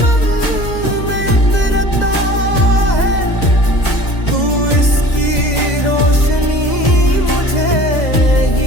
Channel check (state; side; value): late; right; 2.0 ms